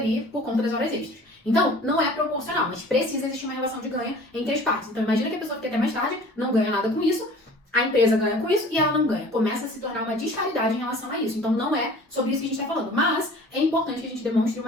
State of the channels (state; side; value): normal; both; correlation 0.46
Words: por conta das horas extras. Então, não é proporcional, mas precisa existir uma relação de ganho entre as partes. Então, imagina que a pessoa fica até mais tarde, não ganha nada com isso, a empresa ganha com isso e ela não ganha. Começa a se tornar uma disparidade em relação a isso. Então, não é sobre isso que a gente está falando. Mas é importante que a gente demonstre